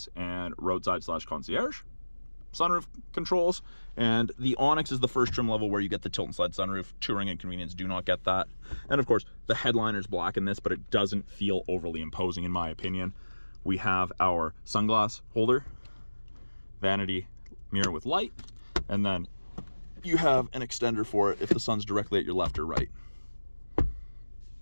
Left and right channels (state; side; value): inverted; both; correlation -1.00